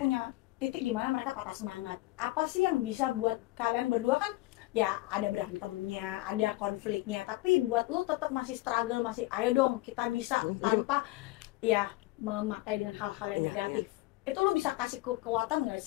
titik di mana mereka patah semangat. Apa sih yang bisa buat kalian berdua kan? Ya ada berantemnya, ada konfliknya, tapi buat lo tetap masih struggle, masih ayo dong kita bisa tanpa ya memakai dengan hal-hal yang negatif. Itu lo bisa kasih kekuatan nggak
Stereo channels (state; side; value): quieter; right; 19.6 dB